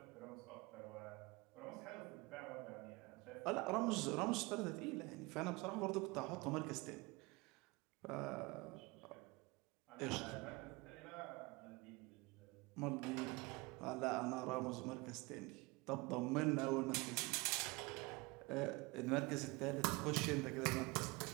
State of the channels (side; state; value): left; quieter; 24.8 dB